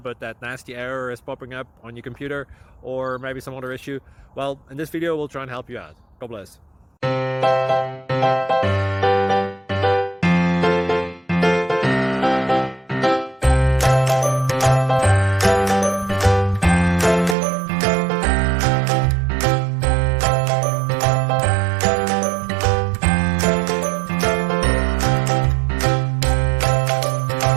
but that nasty error is popping up on your computer, or maybe some other issue. Well, in this video we'll try and help you out. God bless.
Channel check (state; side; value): drops out; left; at 17.4 s